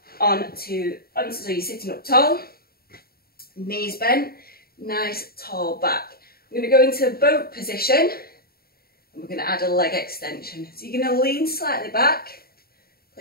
onto so you're sitting up tall, knees bent, nice tall back. We're going to go into boat position and we're going to add a leg extension. So you're going to lean slightly back,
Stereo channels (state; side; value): late; right; 0.44 ms